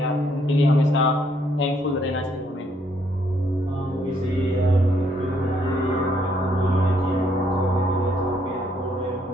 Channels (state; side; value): normal; both; correlation 0.70